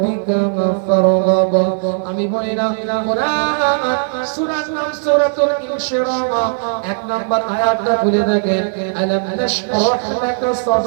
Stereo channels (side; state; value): left; silent; digital silence